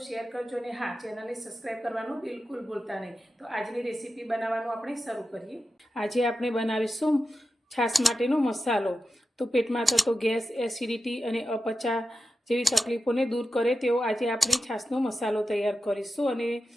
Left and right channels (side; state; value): both; normal; correlation 0.91